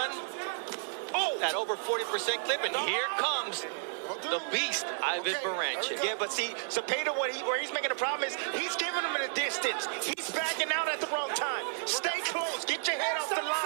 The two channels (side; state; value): left; silent; 56 dB below the other